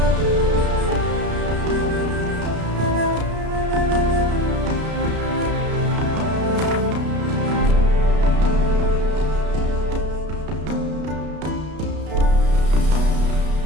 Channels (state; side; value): late; left; 33 ms